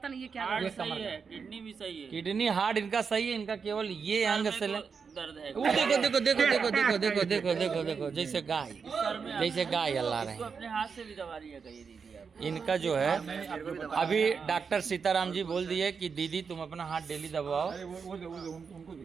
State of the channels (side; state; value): left; quieter; 5.8 dB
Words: नहीं ये क्या हार्ट सही है, किडनी भी सही है। किडनी हार्ट इनका सही है, इनका केवल ये अंग से दर्द है। देखो जैसे गाय अल्लाह रहे हैं। अपने हाथ से भी दवा लिया करिए दीदी आप। इनका जो है अभी डॉक्टर सीताराम जी बोल दिए कि दीदी तुम अपना हाथ डेली दबाओ।